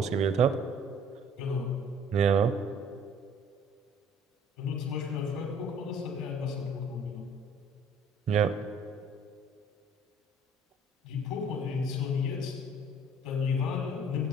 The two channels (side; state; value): both; normal; correlation 0.55